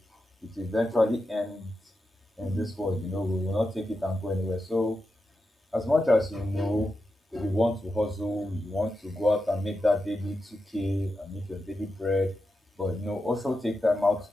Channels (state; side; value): normal; both; correlation 0.88